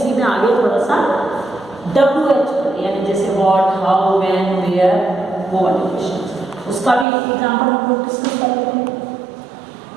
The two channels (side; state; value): left; drops out; at 7.1 s